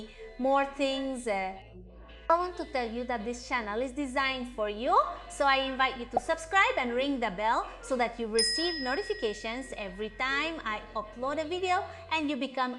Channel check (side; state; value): both; identical; correlation 1.00